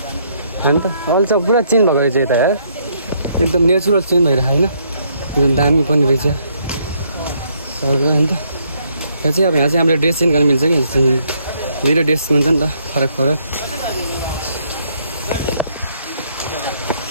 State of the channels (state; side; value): inverted; both; correlation -0.71